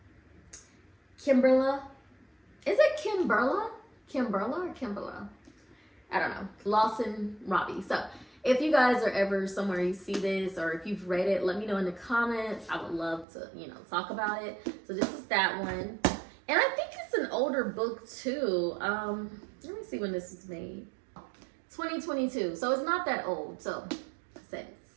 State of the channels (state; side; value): drops out; left; at 13.2 s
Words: Kimberla. Is it Kimberla? Kimberla or Kimberla? I don't know. Lawson Robbie. So if you guys are ever somewhere you see this or if you've read it, let me know in the comments. I would love to, you know, talk about it. So this is that one. And I think it's an older book too. Let me see when this was made. 2022. So it's not that old. So I said it's